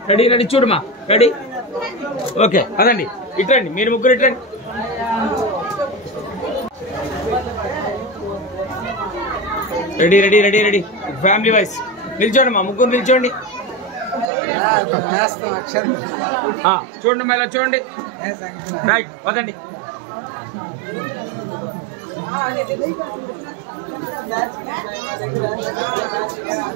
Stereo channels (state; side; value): drops out; left; at 14.2 s